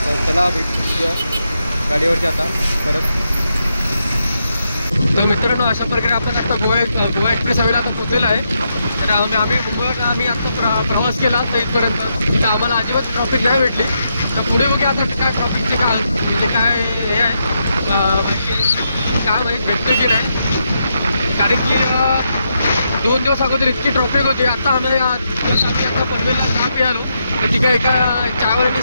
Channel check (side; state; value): both; inverted; correlation -0.82